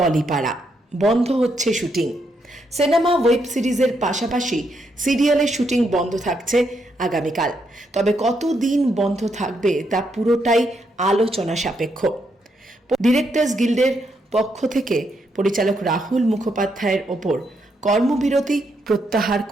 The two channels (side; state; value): both; normal; correlation 0.78